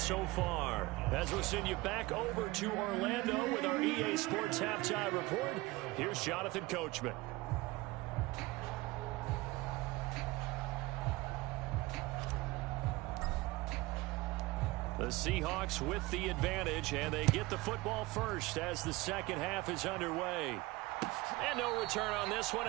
far. As we'll send you back over to Orlando with our EA Sports Halftime Report, here's Jonathan Coachman. The Seahawks with the advantage, and they get the football first as the second half is underway. And no return on this one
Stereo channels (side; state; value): left; quieter; 20.9 dB